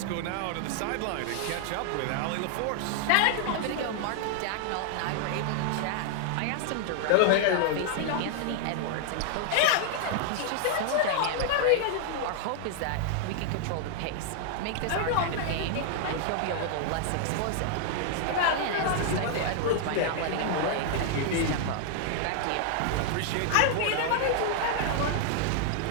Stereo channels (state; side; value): different; both; correlation 0.00